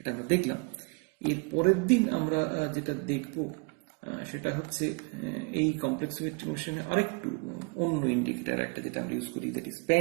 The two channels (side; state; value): left; quieter; 32.1 dB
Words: আমরা দেখলাম। এর পরের দিন আমরা যেটা দেখব সেটা হচ্ছে এই কমপ্লেক্সোমেট্রিক মেশিনে আরেকটু অন্য ইন্ডিকেটর একটা যেটা আমরা ইউজ করি, দ্যাট ইজ